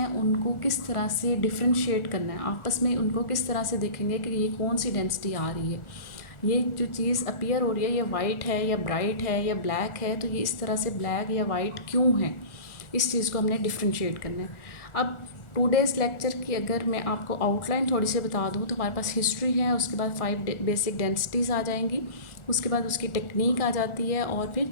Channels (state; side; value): late; right; 1.4 ms